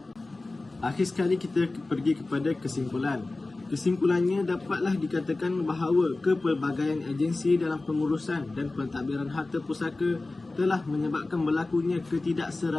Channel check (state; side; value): quieter; right; 3.2 dB